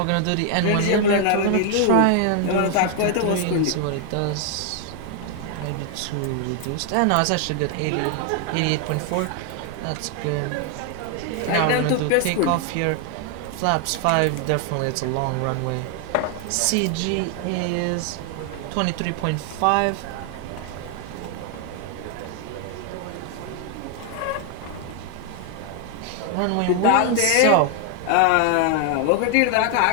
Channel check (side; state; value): both; different; correlation 0.00